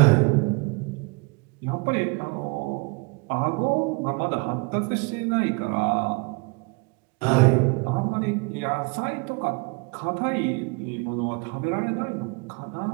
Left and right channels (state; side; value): quieter; left; 29.3 dB